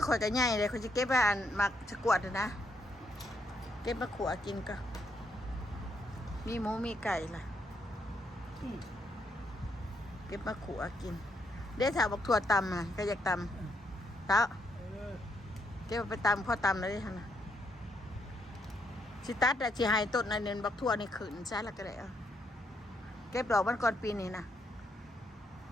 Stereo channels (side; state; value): both; normal; correlation 0.75